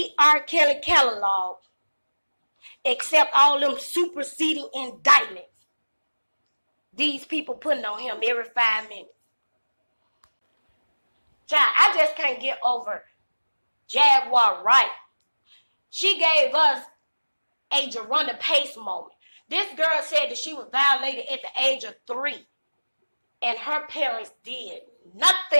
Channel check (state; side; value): inverted; both; correlation -1.00